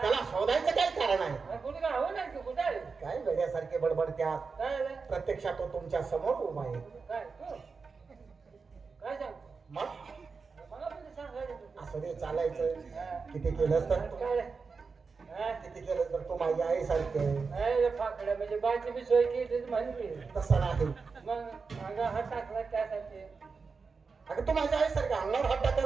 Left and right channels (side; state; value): left; quieter; 4.8 dB